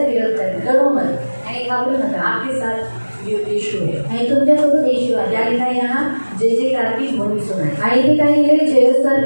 विरोध करणार. डरो मत. आणि घाबरू नका. आपके साथ यीशु है. आणि तुमच्यासोबत येशू आहे. क्या लिखा है यहाँ, जय जयकार की ध्वनि सुनाई. आणि इथे काही लिहिले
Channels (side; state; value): both; inverted; correlation -1.00